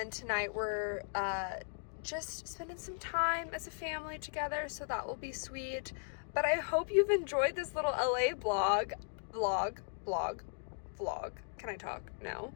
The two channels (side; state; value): right; silent; digital silence